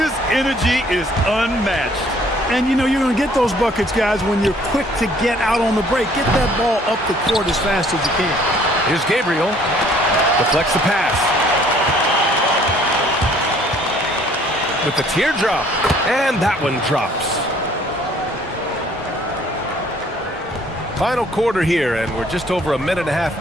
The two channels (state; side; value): normal; both; correlation 0.59